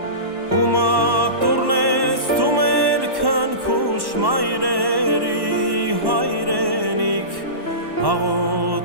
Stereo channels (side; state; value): left; late; 1.1 ms